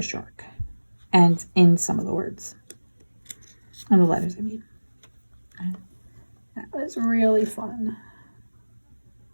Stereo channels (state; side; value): inverted; both; correlation -1.00